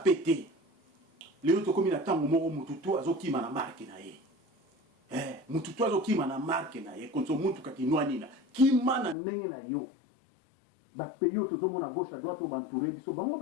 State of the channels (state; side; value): drops out; right; at 9.2 s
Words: Lelo to komi na tango moko mututu azokima na marque na ye. Mututu azokima na marque na ye konso muntu kakinwa nina kima na ndenge na yo ba peyo tozomona gauche à droite obantouré biso bango